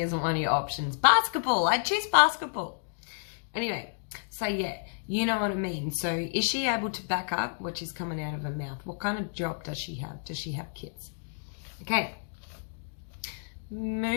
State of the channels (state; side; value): silent; right; digital silence